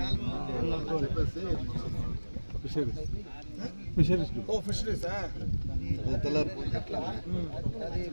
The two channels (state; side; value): inverted; both; correlation -1.00